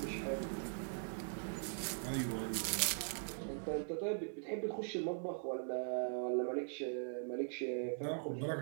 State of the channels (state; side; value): silent; left; digital silence